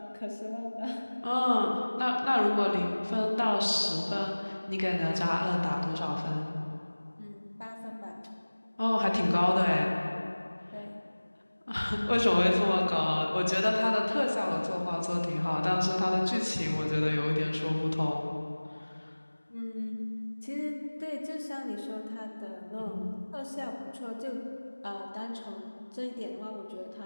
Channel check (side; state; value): both; inverted; correlation -1.00